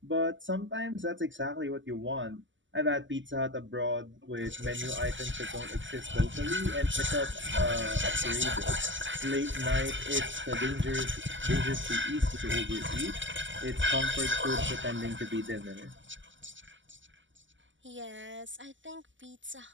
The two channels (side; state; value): left; late; 0.55 ms